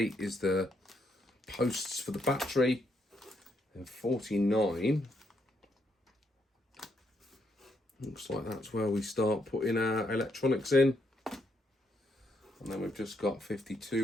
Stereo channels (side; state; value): both; normal; correlation 0.76